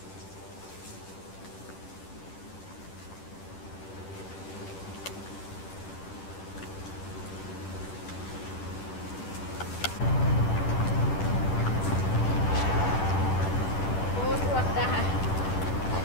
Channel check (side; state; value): right; late; 10 ms